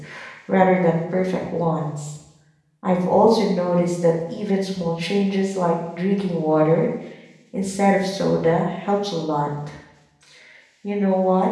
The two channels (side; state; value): both; identical; correlation 1.00